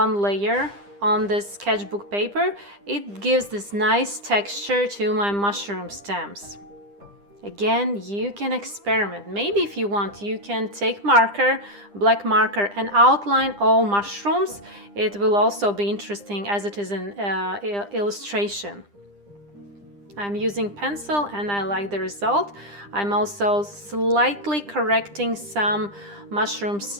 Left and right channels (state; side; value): late; left; 9.9 ms